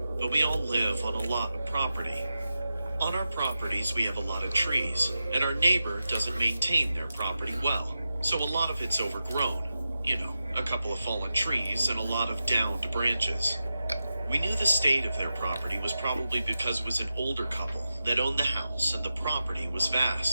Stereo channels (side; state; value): both; inverted; correlation -0.91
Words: but we all live on a lot of property. On our properties, we have a lot of trees, and our neighbor doesn't maintain their property well, so a lot of it's overgrown. You know, a couple of fallen trees and a lot of downed branches. We knew the state of their property was probably because it was an older couple that owned the house and the property was